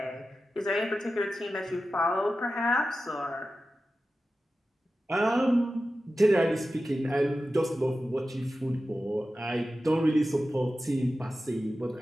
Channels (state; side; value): normal; both; correlation 0.93